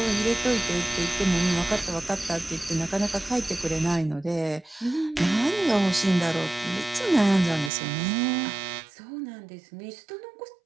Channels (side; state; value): left; drops out; at 7.7 s